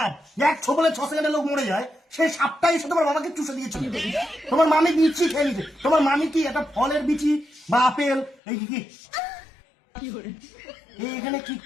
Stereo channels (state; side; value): drops out; right; at 8.3 s